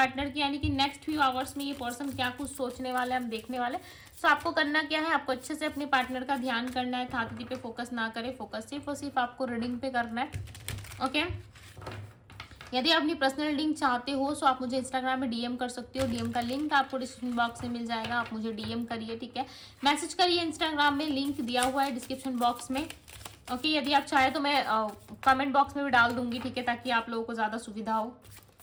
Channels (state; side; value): identical; both; correlation 1.00